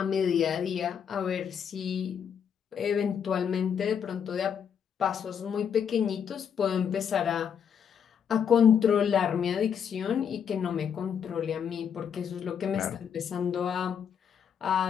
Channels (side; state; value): right; quieter; 7.8 dB